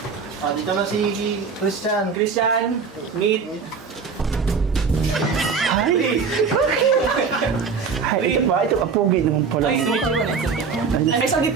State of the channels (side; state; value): left; quieter; 5.5 dB